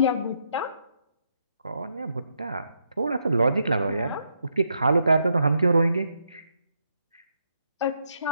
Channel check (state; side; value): inverted; both; correlation -0.78